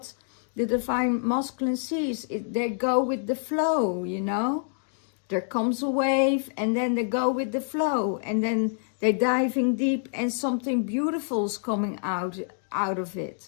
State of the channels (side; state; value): right; silent; digital silence